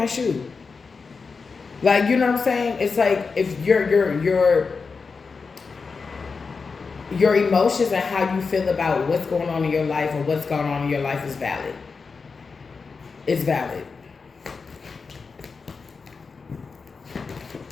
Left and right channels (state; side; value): quieter; right; 4.8 dB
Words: shoe. Like, you know what I'm saying? It's like if you're your emotions and how you feel about what's going on in your life or what's going on in your life is valid. It's valid.